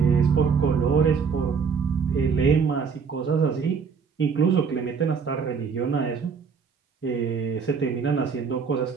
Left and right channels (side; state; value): left; quieter; 5.9 dB